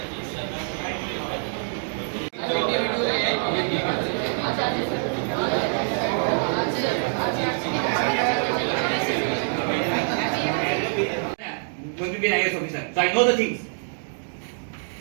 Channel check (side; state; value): left; silent; 62 dB below the other